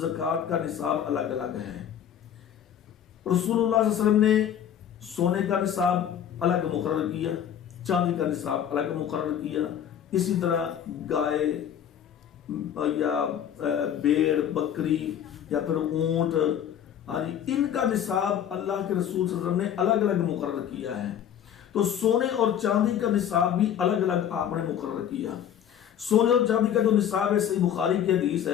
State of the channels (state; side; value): quieter; right; 9.5 dB